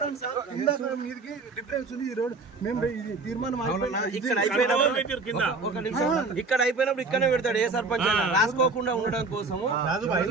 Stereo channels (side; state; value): left; quieter; 3.8 dB